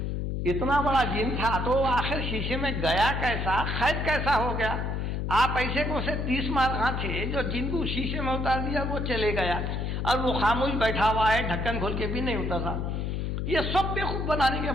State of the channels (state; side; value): noise; left; hum, 1 dB below the sound